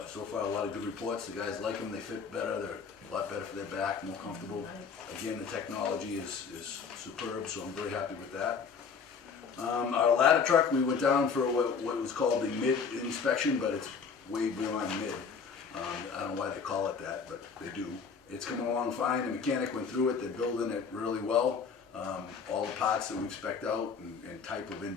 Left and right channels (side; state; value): right; quieter; 5.8 dB